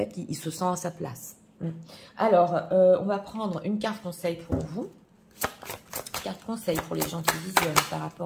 qu'il se sent à sa place. Alors, on va prendre une carte conseil pour vous. Carte conseil pour les gens qui visionnent par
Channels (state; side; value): identical; both; correlation 1.00